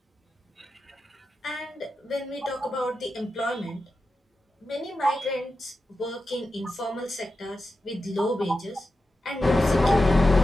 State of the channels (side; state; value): both; normal; correlation 0.90